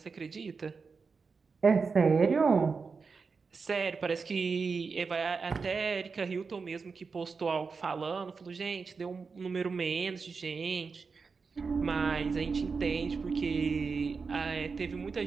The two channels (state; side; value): quieter; left; 4.9 dB